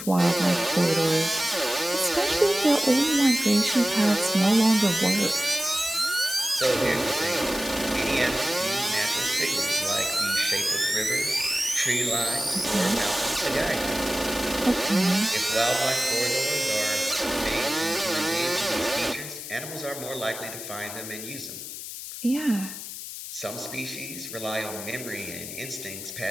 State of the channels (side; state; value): left; noise; hiss, 9 dB below the sound